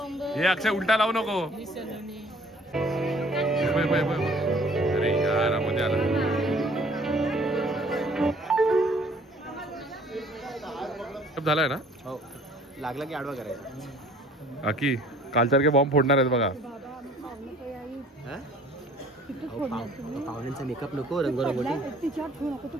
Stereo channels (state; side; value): normal; both; correlation 0.54